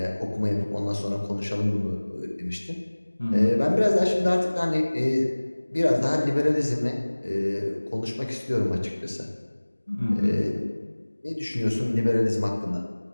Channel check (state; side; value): inverted; both; correlation -1.00